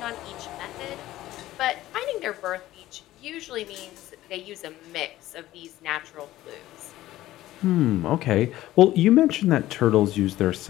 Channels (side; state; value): right; quieter; 15.3 dB